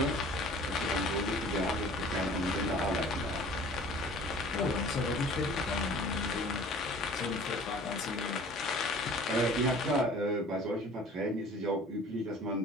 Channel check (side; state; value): both; normal; correlation 0.47